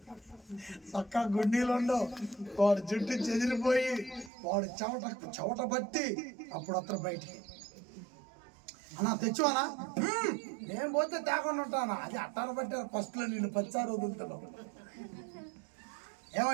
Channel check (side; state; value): left; drops out; at 4.3 s